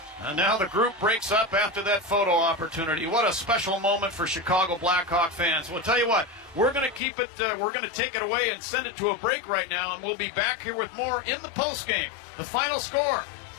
And now the group breaks up after that photo opportunity. What a special moment for Chicago Blackhawk fans. We'll tell you what, we're going to keep it, we're going to take it away and send it to a break right now, and we'll be back here with more in the postgame. The final score,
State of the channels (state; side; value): drops out; right; at 7.0 s